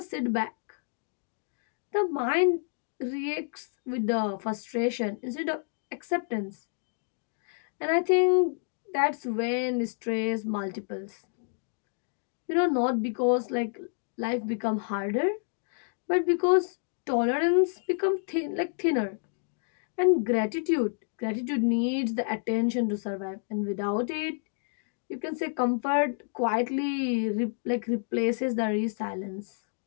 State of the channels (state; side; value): silent; right; 58 dB below the other